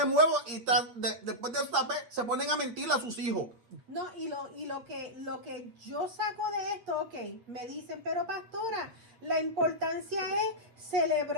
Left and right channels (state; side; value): late; left; 8.6 ms